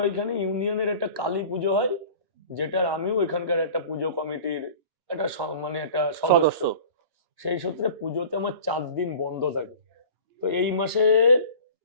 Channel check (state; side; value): late; left; 2.9 ms